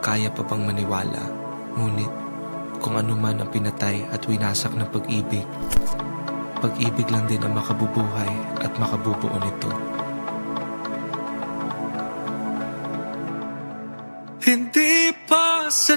kaya pa bang maniwala. Ngunit kung ano man ang pinatay at winasak ng pag-ibig, pag-ibig lang din ang makabubuhay at makabubuo nito. Hindi pa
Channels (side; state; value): both; inverted; correlation -1.00